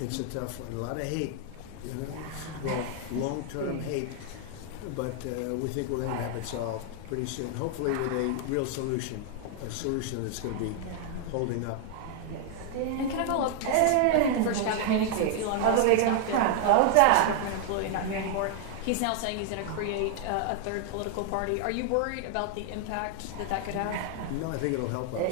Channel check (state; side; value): different; both; correlation 0.00